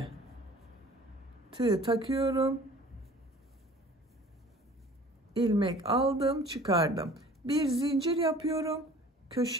tığ takıyorum. İlmek aldım, çıkardım. Bir zincir yapıyorum.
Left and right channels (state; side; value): normal; both; correlation 0.48